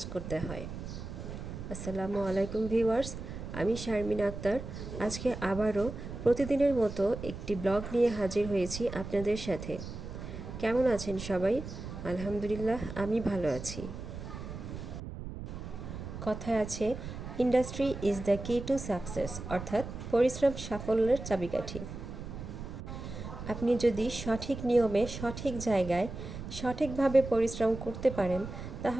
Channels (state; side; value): noise; right; rumble, 9 dB below the sound